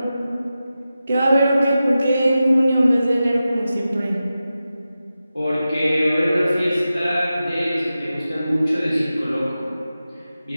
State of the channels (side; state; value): both; inverted; correlation -0.93